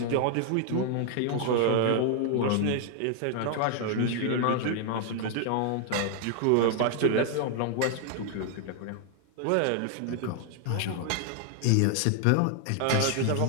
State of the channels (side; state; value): both; different; correlation 0.00